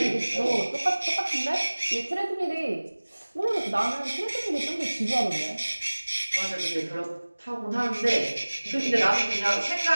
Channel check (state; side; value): inverted; both; correlation -1.00